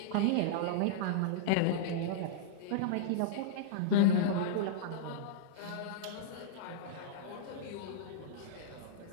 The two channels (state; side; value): different; both; correlation -0.02